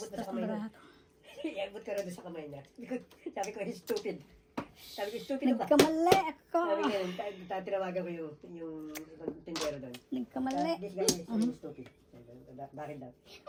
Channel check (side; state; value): both; identical; correlation 1.00